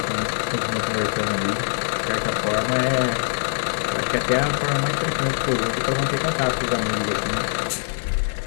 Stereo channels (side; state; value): right; silent; 58 dB below the other